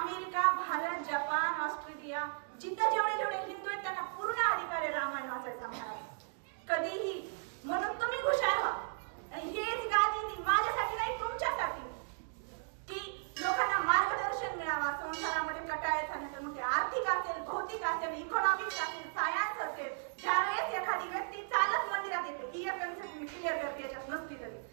भारत, जपान, ऑस्ट्रेलिया, जिथं जेवढे हिंदू आहेत त्यांना पूर्ण अधिकार आहे रामायण वाचायचा महाराज कधीही. म्हणून तुम्ही हुशार व्हा. आणि हेच गादी माझ्यासाठी नाही, तुमच्यासाठी, की लोकांना मार्गदर्शन मिळावा संसारामध्ये कटाळायचा नाही. तर मग ते आर्थिक असेल, भौतिक असेल, इकॉनॉमिक्स असेल, सायन्स असेल. ज्यावेळेस एखादी व्यक्ती चालत मंदिरात येते, ही एक कन्सेप्ट मी क्लिअर करते, याच्यात नसती तरी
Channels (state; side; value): silent; left; digital silence